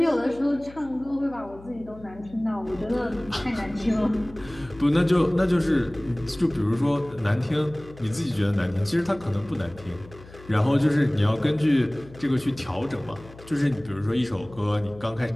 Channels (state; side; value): noise; left; hum, 20 dB below the sound